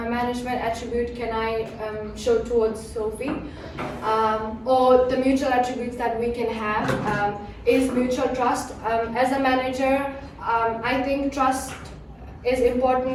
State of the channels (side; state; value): both; identical; correlation 1.00